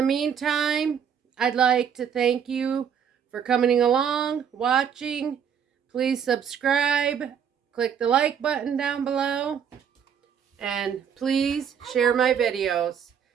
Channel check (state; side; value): quieter; left; 7.9 dB